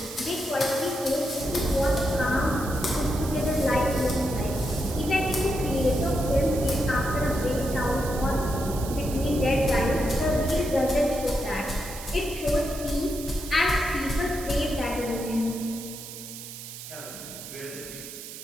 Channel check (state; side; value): noise; right; hiss, 12 dB below the sound